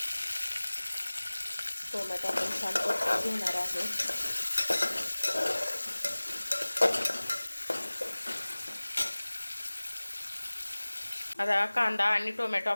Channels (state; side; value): inverted; both; correlation -1.00